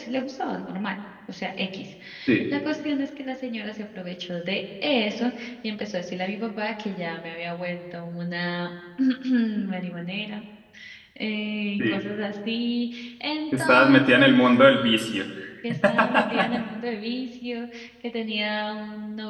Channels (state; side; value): identical; both; correlation 1.00